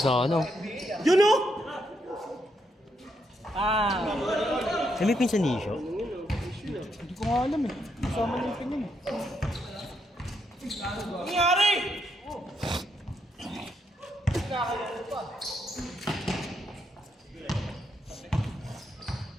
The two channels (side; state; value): both; normal; correlation 0.78